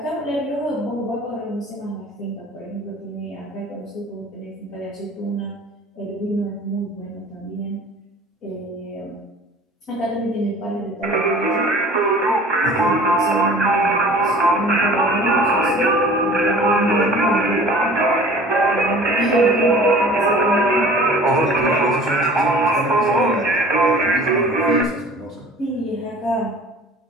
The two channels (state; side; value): normal; both; correlation 0.46